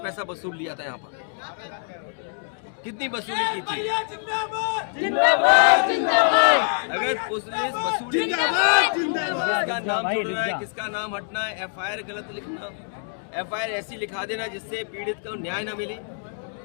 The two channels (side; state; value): right; silent; 62 dB below the other